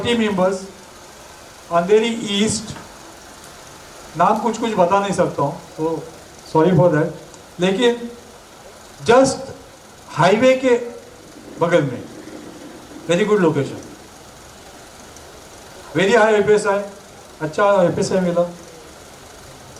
members, Andheri east. नाम कुछ कुछ बता नहीं सकता हूँ, तो सॉरी फॉर दैट, लेकिन जस्ट हाईवे के बगल में, very good location, very high FSI, अच्छा एफएसआई मिला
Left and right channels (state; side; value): identical; both; correlation 1.00